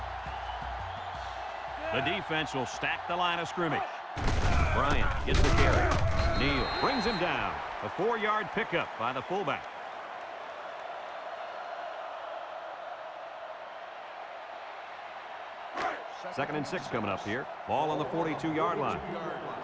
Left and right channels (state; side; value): identical; both; correlation 1.00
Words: The defense will stack the line of scrimmage. Bryant gets the carry. Neal brings him down. A 4-yard pickup by the fullback. Second and 6 coming up here. Ball on the 42-yard line.